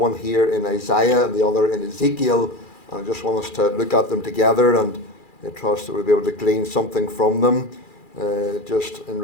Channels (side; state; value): right; late; 2.4 ms